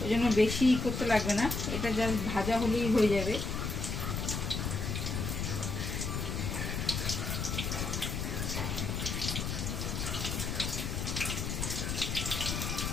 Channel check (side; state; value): left; noise; rumble, 2 dB below the sound